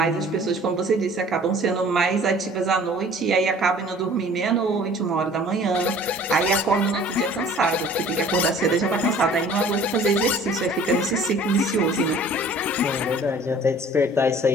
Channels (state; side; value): normal; both; correlation 0.50